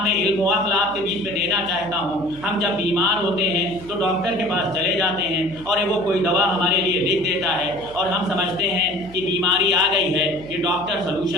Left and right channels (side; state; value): right; noise; hum, 19 dB below the sound